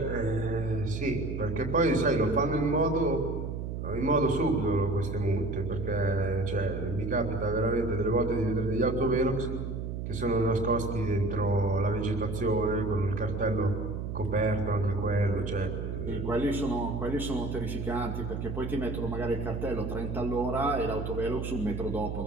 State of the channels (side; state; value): right; noise; hum, 4 dB below the sound